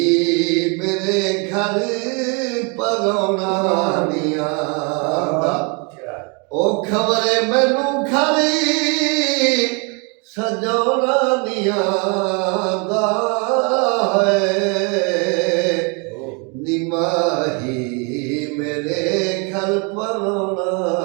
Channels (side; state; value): left; quieter; 33.5 dB